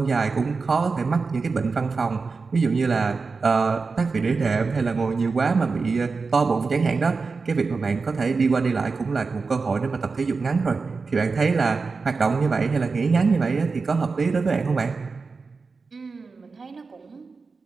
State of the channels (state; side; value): quieter; left; 4.4 dB